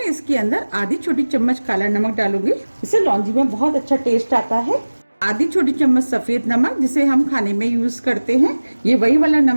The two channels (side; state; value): both; inverted; correlation -1.00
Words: इसके अंदर आधी छोटी चम्मच काला नमक डालूंगी। इससे लौंजी में बहुत अच्छा टेस्ट आता है। आधी छोटी चम्मच सफेद नमक जिसे हम खाने में यूज करते हैं, ये वही वाला